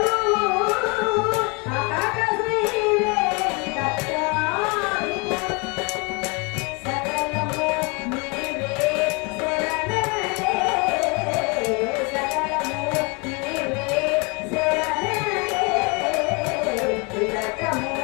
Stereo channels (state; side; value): quieter; right; 30.8 dB